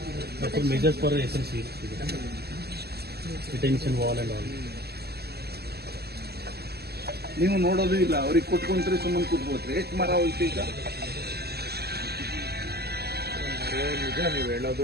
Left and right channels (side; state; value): left; late; 0.47 ms